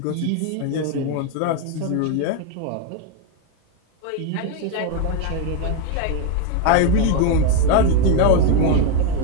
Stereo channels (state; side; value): different; both; correlation 0.02